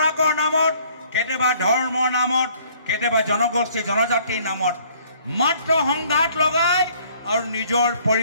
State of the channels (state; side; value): inverted; both; correlation -0.59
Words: নামত, কেতিয়াবা ধৰ্মৰ নামত, কেতিয়াবা জনগোষ্ঠী জনজাতিৰ নামত মাত্ৰ সংঘাত লগাই আৰু নিজৰ